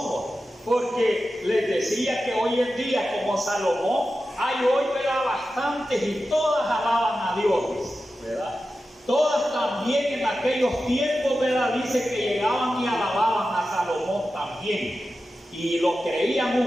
Porque les decía que hoy en día, como Salomón, hay hoy, ¿verdad?, bastantes y todas alaban a Dios, ¿verdad? Todas también en aquellos tiempos, ¿verdad?, dice que llegaban y alababan a Salomón también. Y lo creían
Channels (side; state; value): both; normal; correlation 0.92